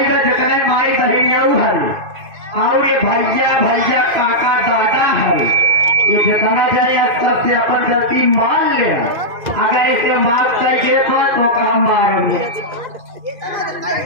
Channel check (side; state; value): left; late; 2.5 ms